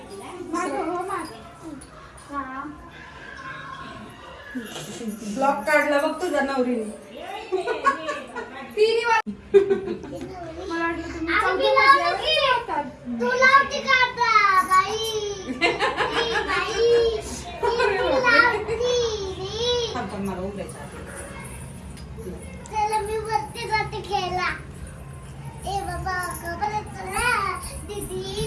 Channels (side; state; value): both; identical; correlation 1.00